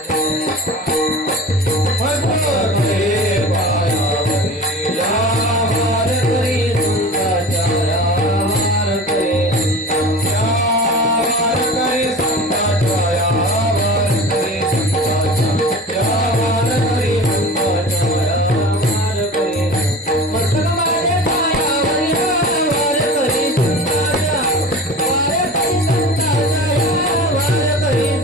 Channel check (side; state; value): both; normal; correlation 0.36